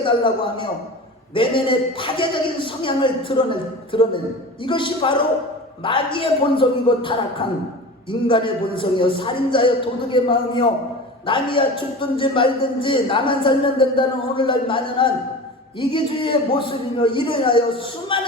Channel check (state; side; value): normal; both; correlation 0.33